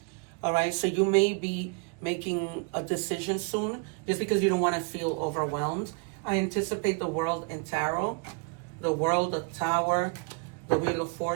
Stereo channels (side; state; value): left; quieter; 33.8 dB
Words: All right, so you may be making a decision soon just because you don't want to feel overwhelmed. I anticipate the world in tarot, the world, the tower, the wheel of